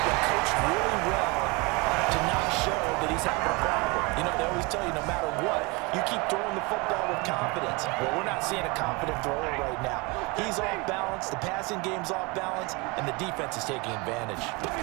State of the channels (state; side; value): quieter; left; 27.2 dB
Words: been coached really well to not show that he's having a problem. You know, they always tell you no matter what, you keep throwing the football with confidence. Well, we're not seeing a confident thrower right now. He's off balance, the passing game's off balance, and the defense is taking advantage.